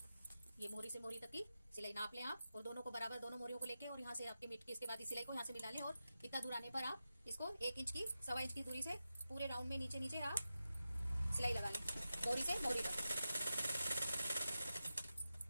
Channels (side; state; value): both; inverted; correlation -0.92